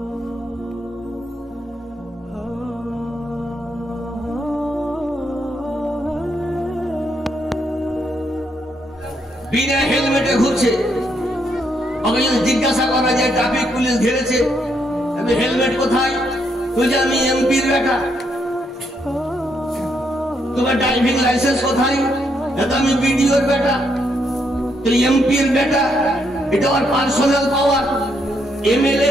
বিনা হেলমেটে ঘুরছে, ওকে যদি জিজ্ঞাসা করা যায় ট্রাফিক পুলিশ ঘিরেছে, আমি হেলমেট কোথায়? তুই আমি এমপির বেটা। তোমার ড্রাইভিং লাইসেন্স কোথায়? এটা আমি বিডিওর বেটা। তুই এমপির বেটা, এটা ওর পার্সোনাল পাওয়ার। এমএলএ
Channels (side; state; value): both; normal; correlation 0.76